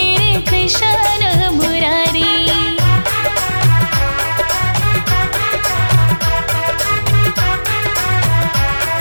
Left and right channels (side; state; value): both; inverted; correlation -1.00